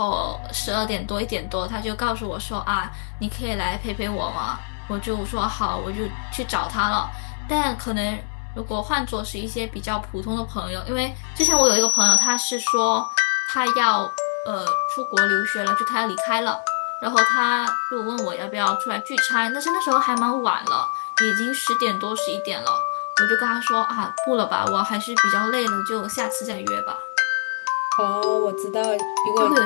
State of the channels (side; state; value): right; silent; 63 dB below the other